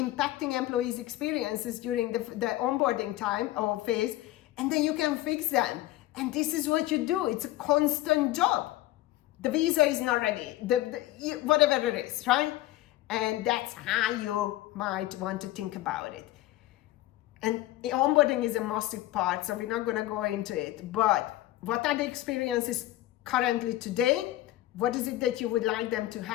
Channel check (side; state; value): right; quieter; 16.0 dB